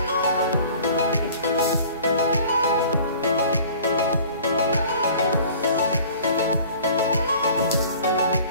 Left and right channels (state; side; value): inverted; both; correlation -0.48